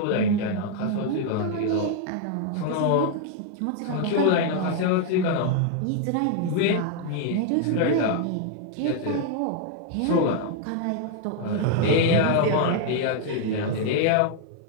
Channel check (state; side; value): different; both; correlation 0.00